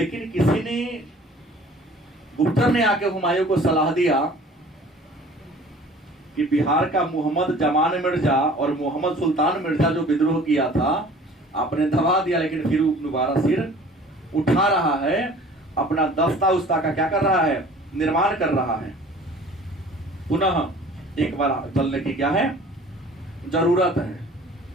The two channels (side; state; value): both; normal; correlation 0.48